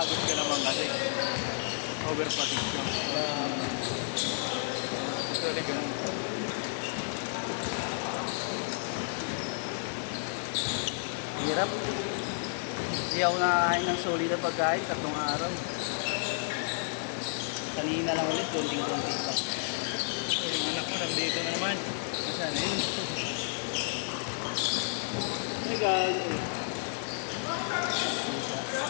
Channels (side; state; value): right; silent; digital silence